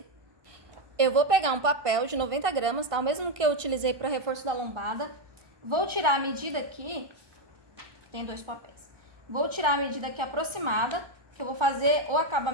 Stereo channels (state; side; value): late; left; 1.2 ms